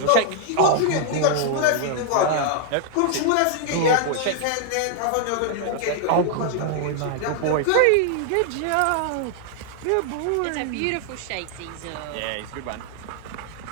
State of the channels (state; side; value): different; both; correlation 0.00